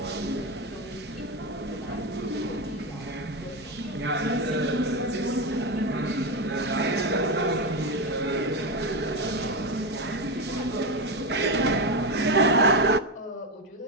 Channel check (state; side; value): normal; both; correlation 0.13